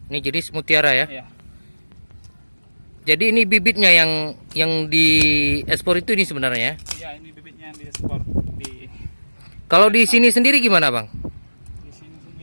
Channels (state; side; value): inverted; both; correlation -1.00